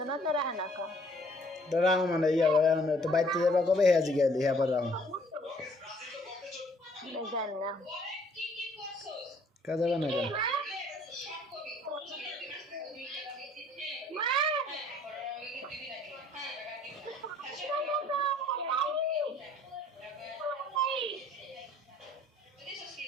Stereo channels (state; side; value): normal; both; correlation 0.59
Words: না তো রাহে না কা তো রাও মানে তো বাইতে যাবা কবে হ্যাঁ জিগাইলি হ্যাঁ পর রাও জানি না কা যাবে না কা